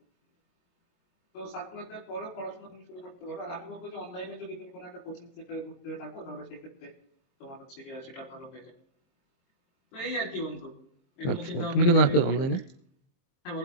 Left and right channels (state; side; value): late; right; 23 ms